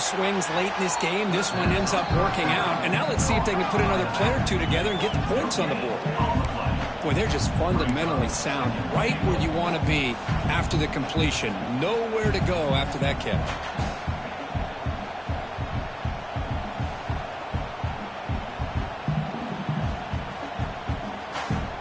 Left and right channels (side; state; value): both; identical; correlation 1.00